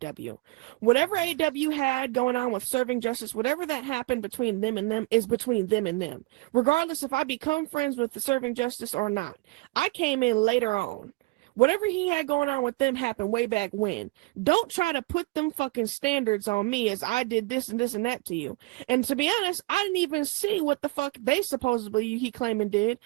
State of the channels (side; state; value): left; quieter; 23.8 dB